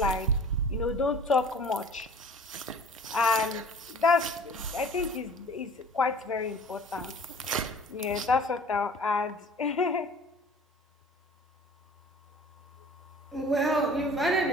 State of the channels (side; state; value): both; normal; correlation 0.47